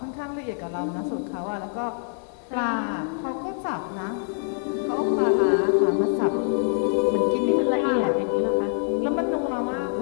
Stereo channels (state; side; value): silent; right; 56 dB below the other